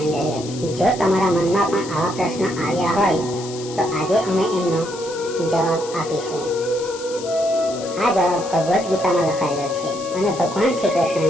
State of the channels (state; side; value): noise; left; hiss, 14 dB below the sound